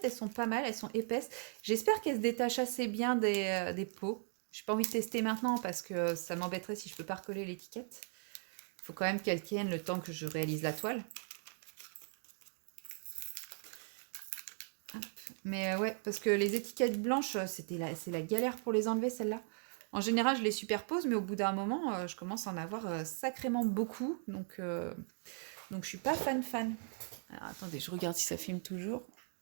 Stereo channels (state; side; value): silent; left; 52 dB below the other